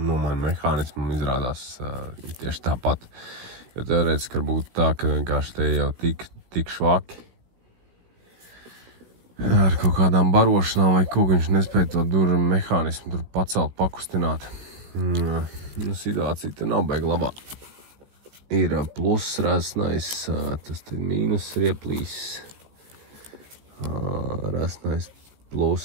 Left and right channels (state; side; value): late; left; 17 ms